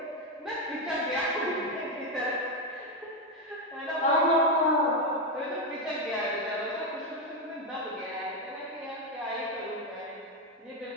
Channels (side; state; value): both; normal; correlation 0.07